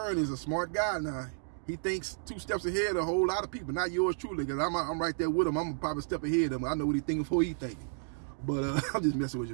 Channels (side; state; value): left; silent; digital silence